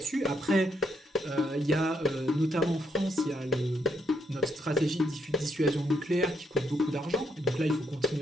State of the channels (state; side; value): normal; both; correlation 0.76